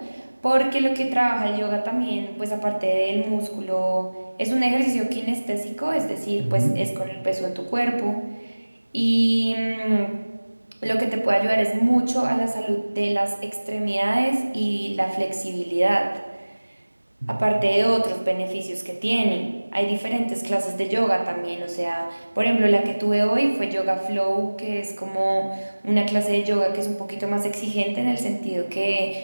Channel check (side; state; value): both; inverted; correlation -1.00